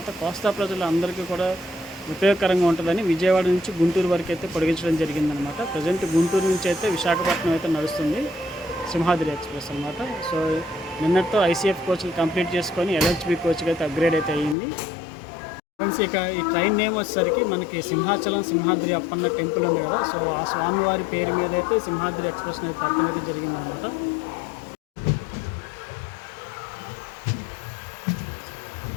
కోస్తా ప్రజలు అందరికీ కూడా ఉపయోగకరంగా ఉంటుందని విజయవాడ నుంచి గుంటూరు వరకు అయితే పొడిగించడం జరిగిందనమాట. ప్రజెంట్ గుంటూరు నుంచి అయితే విశాఖపట్నం అయితే నడుస్తుంది సింహాద్రి ఎక్స్ప్రెస్ అనమాట. సో నిన్నటితో ఐసీఎఫ్ కోచ్లు కంప్లీట్ చేసుకొని ఎల్హెచ్బి కోచ్కి అయితే అప్గ్రేడ్ అయితే అయ్యింది. ఫ్రెండ్స్ ఇక ఈ ట్రైన్ నేమ్ వచ్చేసరికి మనకి సింహాచలం సింహాద్రి అప్పన్న టెంపుల్ ఉంది కదా. సో ఆ స్వామివారి పేరు మీద అయితే సింహాద్రి ఎక్స్ప్రెస్ అనేది పెట్టడం అయితే జరిగిందనమాట.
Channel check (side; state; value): right; drops out; at 14.6 s